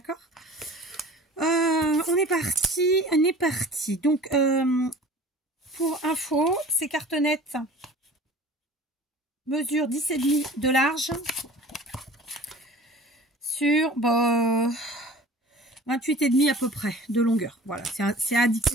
On est parti, donc pour info, ces cartonnettes mesure 10,5 de large sur 28,5 à peu près de longueur. Voilà, c'est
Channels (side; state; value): both; normal; correlation 0.43